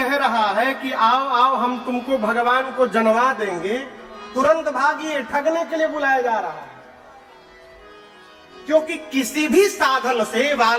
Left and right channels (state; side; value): identical; both; correlation 1.00